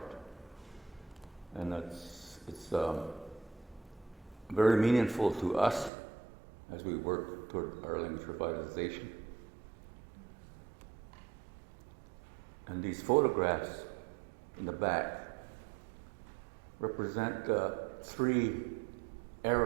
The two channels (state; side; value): drops out; left; at 5.9 s